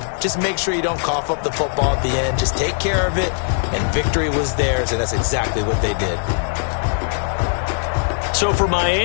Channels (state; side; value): silent; right; digital silence